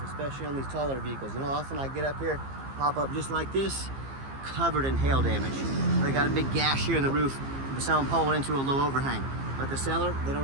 especially on these taller vehicles? You know, often I get up here, pop up just like this, covered in hail damage. They got a big gash here in the roof from someone pulling into a low overhang. But the seller, they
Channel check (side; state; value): left; late; 15 ms